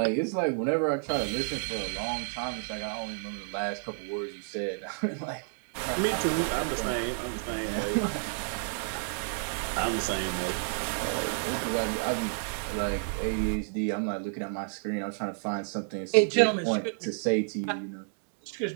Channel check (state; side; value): silent; left; digital silence